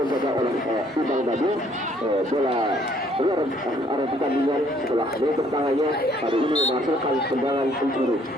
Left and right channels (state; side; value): normal; both; correlation 0.63